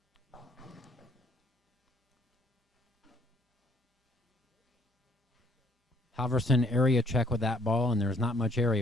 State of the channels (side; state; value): both; normal; correlation 0.64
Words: Halverson area check with that ball, and there's not much